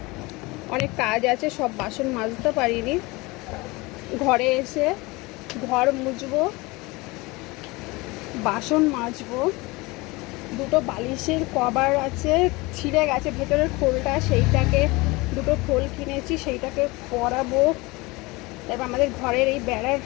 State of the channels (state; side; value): quieter; right; 23.5 dB